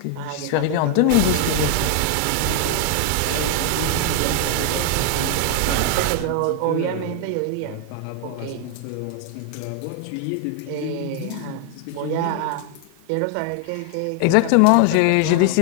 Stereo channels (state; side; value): different; both; correlation 0.00